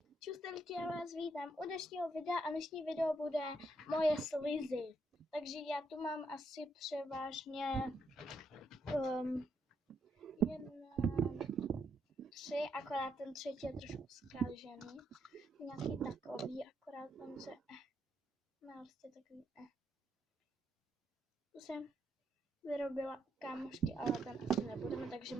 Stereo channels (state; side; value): normal; both; correlation 0.77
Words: Čustelky, já vás vítám u dnešního videa a dnešní video bude moje slizy. Takže já tu mám asi převážně tři, akorát ten třetí je trošku zkážený. Nějaký takový, akorát on se má prostě takový To jsem vyrobila kámošky, ale ten asi nebudeme, takže